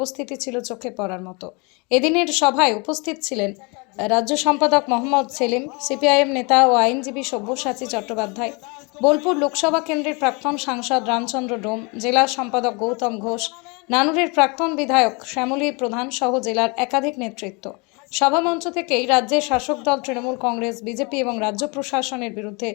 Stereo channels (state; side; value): quieter; right; 30.1 dB